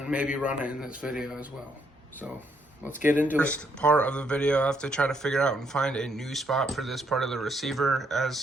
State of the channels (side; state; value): both; normal; correlation 0.72